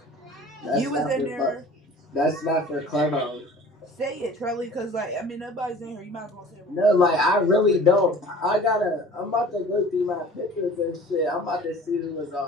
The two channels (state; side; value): normal; both; correlation 0.45